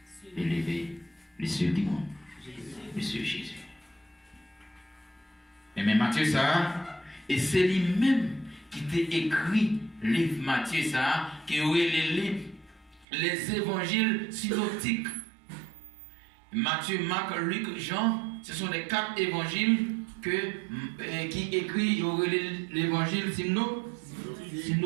élevé les cieux du monde, Monsieur Jésus. Et mais Matthieu ça, et c'est lui-même qui t'a écrit le livre Matthieu ça, qui aurait les évangiles synoptiques. Matthieu, Marc, Luc, Jean, ce sont les 4 évangiles qui écrit l'évangile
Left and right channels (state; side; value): drops out; left; at 13.1 s